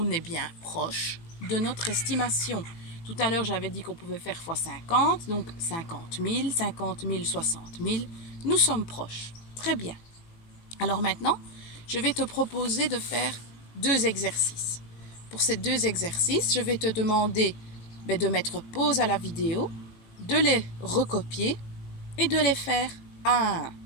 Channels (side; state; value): right; late; 18 ms